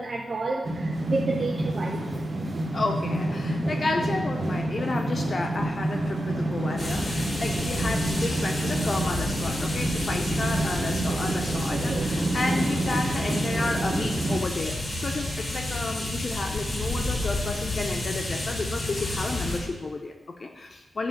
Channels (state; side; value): normal; both; correlation 0.88